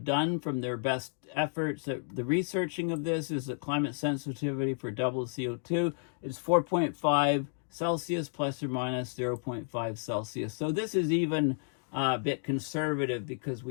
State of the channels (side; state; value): right; silent; digital silence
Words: from their best efforts at the researching of this is that climate sensitivity for doubled CO2 is 4.5 Celsius plus or minus 0.5 Celsius. So this is even a bit conservative because